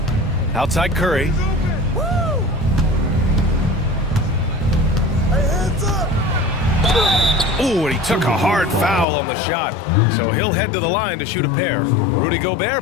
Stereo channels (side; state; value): right; drops out; at 9.1 s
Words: Outside Curry. Ooh, and he took a hard foul on the shot. So he'll head to the line to shoot a pair. Rudy